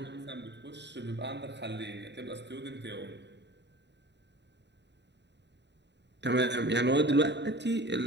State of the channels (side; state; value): left; late; 0.51 ms